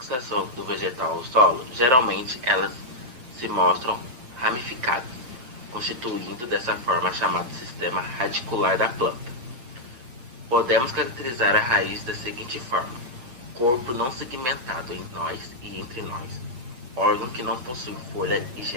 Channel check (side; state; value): left; late; 8.1 ms